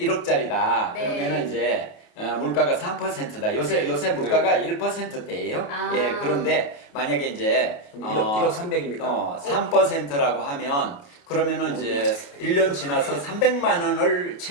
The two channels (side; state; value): right; late; 28 ms